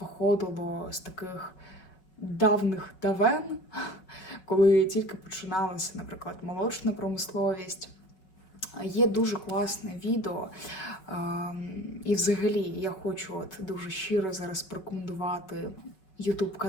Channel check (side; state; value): right; late; 5.4 ms